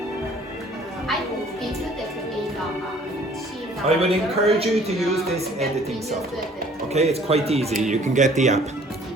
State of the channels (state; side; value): normal; both; correlation 0.55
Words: I would encourage you to use this editing software. Okay, it's quite easy. You can get the app.